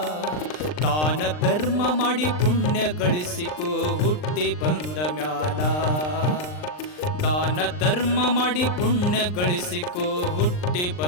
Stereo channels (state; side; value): late; right; 39 ms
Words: ದಾನ ಧರ್ಮ ಮಾಡಿ ಪುಣ್ಯ ಗಳಿಸಿಕೋ ಹುಟ್ಟಿ ಬಂದ ಮ್ಯಾಲ. ದಾನ ಧರ್ಮ ಮಾಡಿ ಪುಣ್ಯ ಗಳಿಸಿಕೋ ಹುಟ್ಟಿ